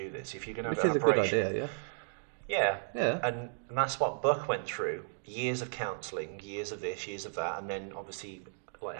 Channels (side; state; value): left; silent; digital silence